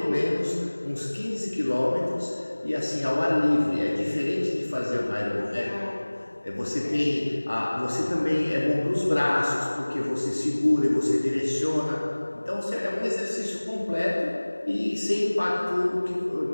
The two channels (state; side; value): inverted; both; correlation -1.00